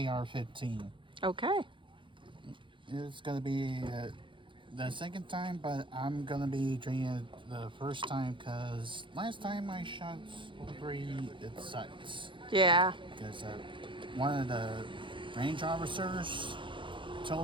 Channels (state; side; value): late; left; 0.24 ms